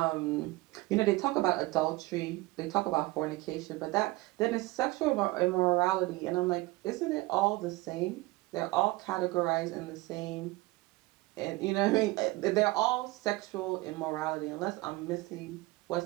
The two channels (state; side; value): quieter; left; 21.0 dB